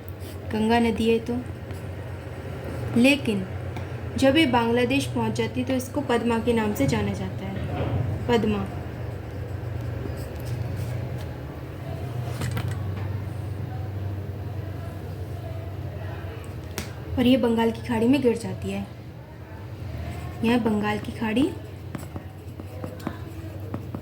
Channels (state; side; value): identical; both; correlation 1.00